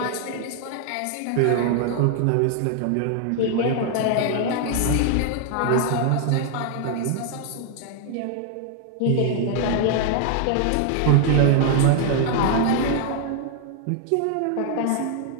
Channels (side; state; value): both; different; correlation 0.00